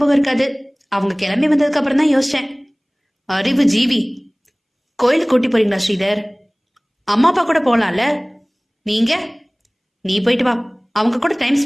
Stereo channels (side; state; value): both; identical; correlation 1.00